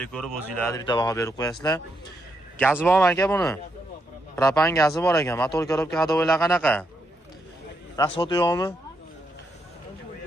ko'rib, o'zingizlarga bitta baho berib qo'yasizlar. Gazi bormi aka buni? Propan gazi bor ekan. Motor korobka hadovoylar qanaqa? Rasxod yo'qmi?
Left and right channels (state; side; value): normal; both; correlation 0.80